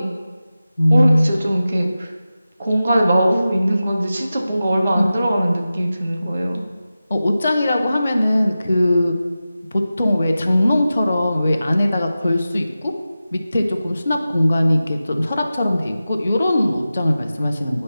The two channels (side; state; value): both; inverted; correlation -0.94